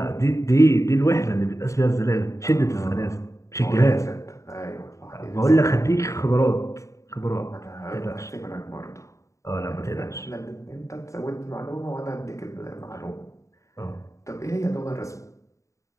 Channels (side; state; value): right; late; 0.15 ms